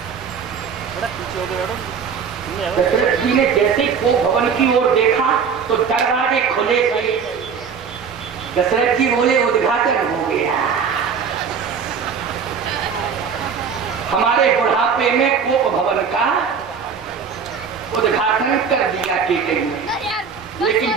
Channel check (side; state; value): left; quieter; 6.3 dB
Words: दशरथ जी ने जैसे ही को भवन की ओर देखा तो दरवाजे खुले गए। दशरथ जी बोले उद्घाटन हो गया। हमारे बुढ़ापे में कोप भवन का उद्घाटन कर दिया कि लेकिन